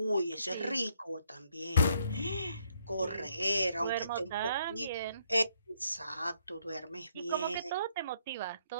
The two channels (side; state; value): both; inverted; correlation -0.70